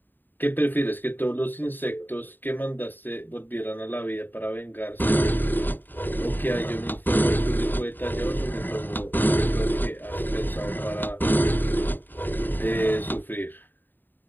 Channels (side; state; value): right; late; 0.092 ms